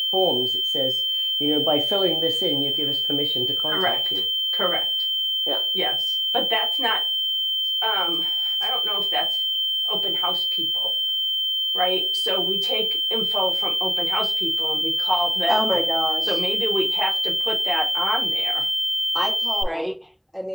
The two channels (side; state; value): both; identical; correlation 1.00